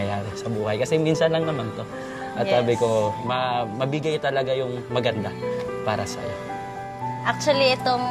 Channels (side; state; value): both; identical; correlation 1.00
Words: sa buhay. Kasi minsan lang naman to. At sabi ko, mabigay talaga yung maganda para sa'yo. Actually,